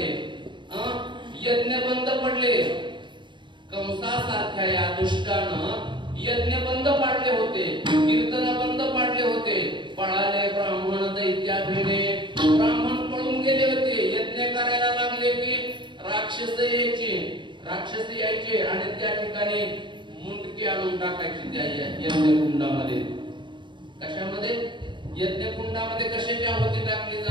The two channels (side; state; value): left; late; 0.23 ms